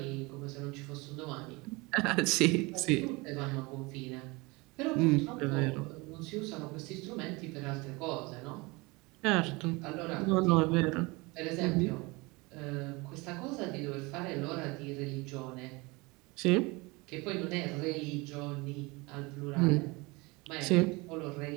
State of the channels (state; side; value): quieter; left; 25.1 dB